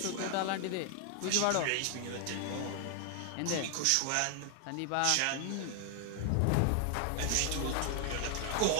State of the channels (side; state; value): both; different; correlation 0.00